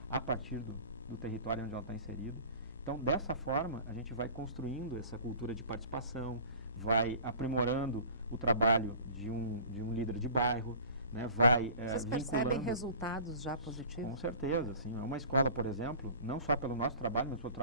a partir do território onde ela está inserida. Então, dessa forma, a gente vai construindo essa cultura de participação, vai aprimorando o trabalho de um líder de bairro, né, vai Vocês percebem resultados já positivos? Com certeza, sim. É uma escola, por exemplo, não só pelo nosso trabalho, mas pelo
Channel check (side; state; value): both; inverted; correlation -0.43